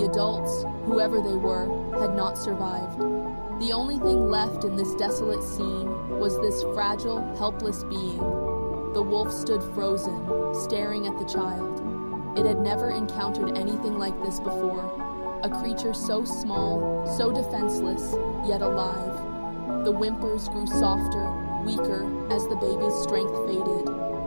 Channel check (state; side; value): inverted; both; correlation -1.00